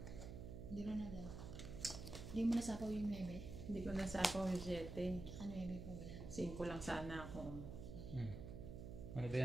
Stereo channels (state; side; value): noise; right; hum, 8 dB below the sound